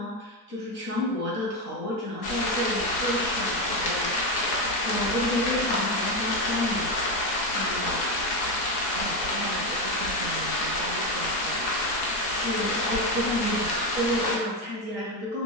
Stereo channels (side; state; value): right; late; 4.7 ms